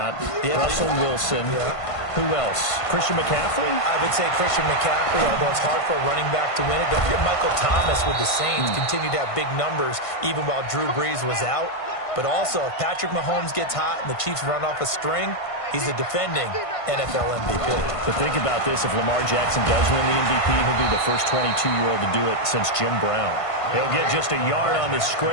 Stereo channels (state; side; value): late; right; 1.5 ms